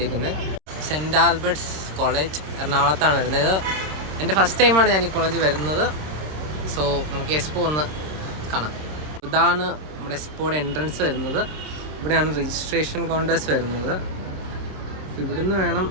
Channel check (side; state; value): left; late; 26 ms